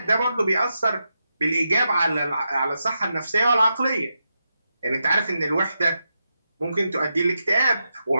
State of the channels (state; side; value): inverted; both; correlation -0.87